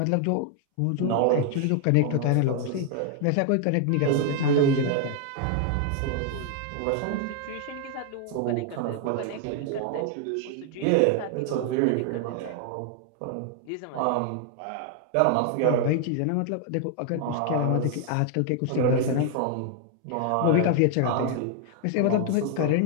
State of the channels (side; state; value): both; different; correlation 0.00